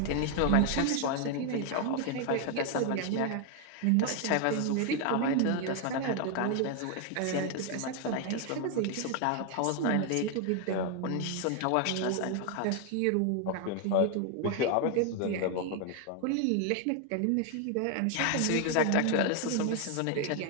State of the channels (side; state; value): both; different; correlation 0.01